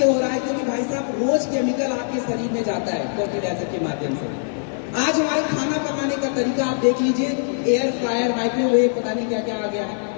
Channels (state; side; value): silent; right; digital silence